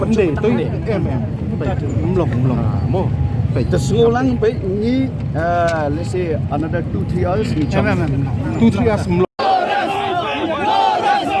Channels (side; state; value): both; identical; correlation 1.00